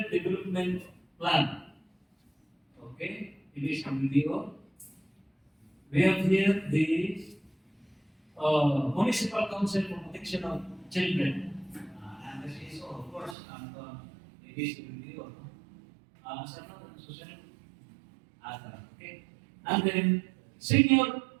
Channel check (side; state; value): left; drops out; at 13.4 s